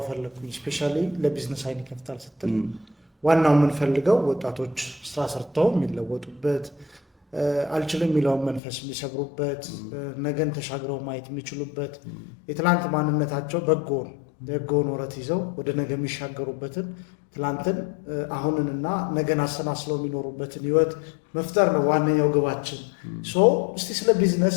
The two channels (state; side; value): drops out; right; at 8.6 s